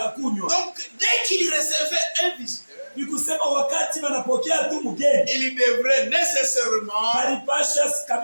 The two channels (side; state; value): both; inverted; correlation -1.00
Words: Donc, dès qu'il recevait un visiteur, Ni kusema wakati wanapokea tu mgeni, il devrait nécessairement balipasha